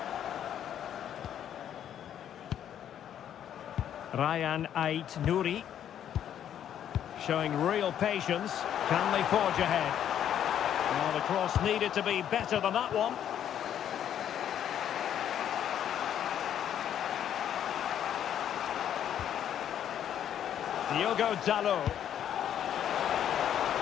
Ryan Ait-Nouri. Showing real patience. Can they forge ahead? Well, the cross needed to be better than that one. Diogo Dalot.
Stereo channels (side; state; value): right; quieter; 10.0 dB